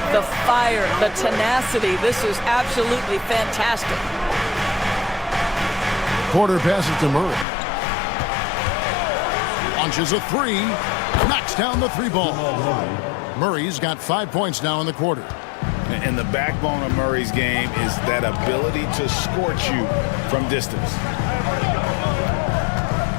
the fire, the tenacity. This is absolutely fantastic. Porter passes to Murray. Launches a 3. Knocks down the 3 ball. Murray's got 5 points now in the quarter. And the backbone of Murray's game is that ability to scorch you from distance.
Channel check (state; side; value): drops out; right; at 7.5 s